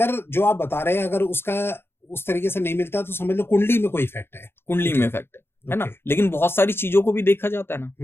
जो आप बता रहे हैं अगर उसका उस तरीके से नहीं मिलता तो समझ लो कुंडली में कोई इफेक्ट है। कुंडली में इफेक्ट है ना। लेकिन बहुत सारी चीजों को भी देखा जाता है ना।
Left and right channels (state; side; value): late; right; 0.11 ms